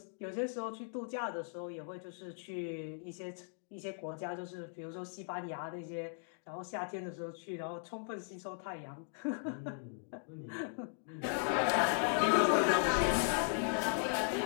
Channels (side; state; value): right; silent; digital silence